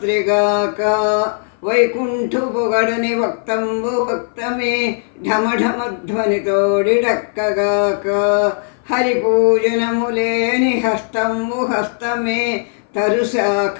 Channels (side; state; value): right; silent; 58 dB below the other